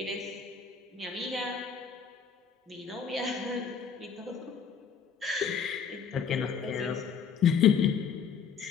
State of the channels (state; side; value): quieter; right; 6.6 dB